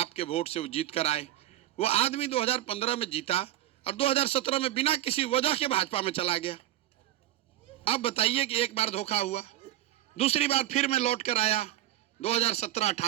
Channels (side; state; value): left; quieter; 14.5 dB